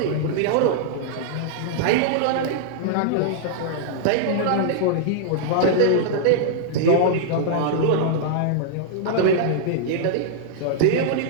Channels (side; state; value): both; different; correlation -0.01